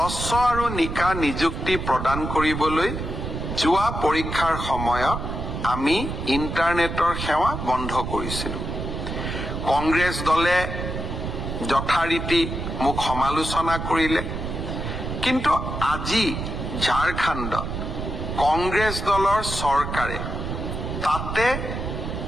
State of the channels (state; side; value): noise; right; rumble, 5 dB below the sound